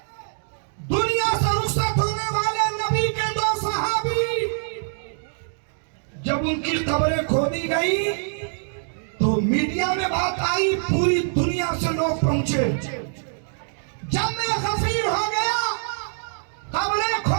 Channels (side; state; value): left; silent; 62 dB below the other